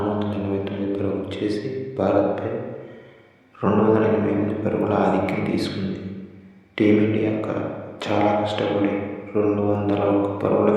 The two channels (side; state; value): both; identical; correlation 1.00